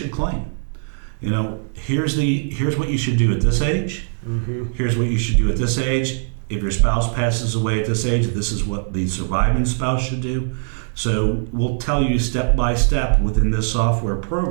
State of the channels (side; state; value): left; silent; digital silence